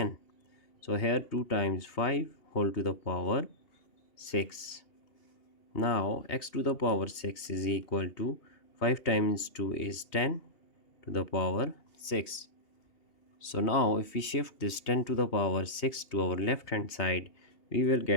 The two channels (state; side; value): late; right; 2.8 ms